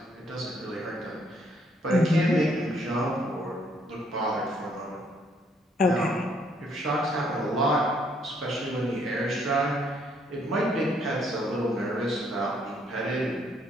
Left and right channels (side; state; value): both; normal; correlation 0.68